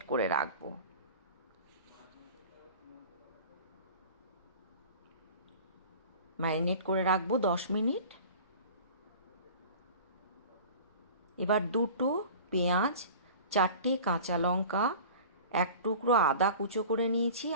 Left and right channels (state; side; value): inverted; both; correlation -0.40